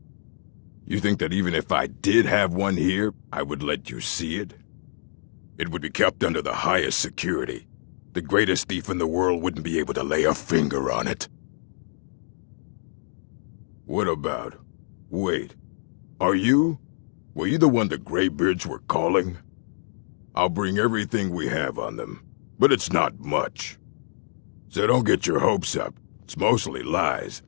You think that even if I did have one here, I would let you see it? It would be kept under the highest security. The greatest thief in the world wouldn't be able to lay a finger on it. What about... Wait. Were you the one the Greybeards were calling? I'll bring everything we have on them, but it's not much. So don't get your hopes up. It's mostly lies,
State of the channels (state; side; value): silent; right; digital silence